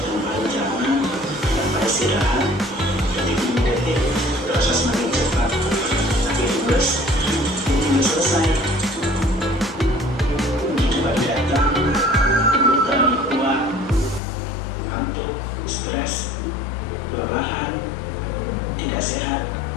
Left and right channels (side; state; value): right; drops out; at 14.2 s